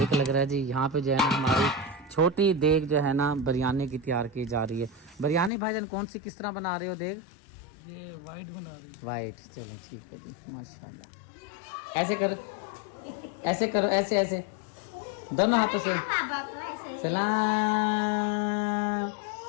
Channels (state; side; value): drops out; right; at 5.5 s